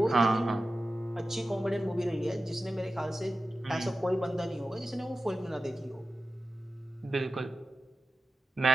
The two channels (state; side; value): normal; both; correlation 0.93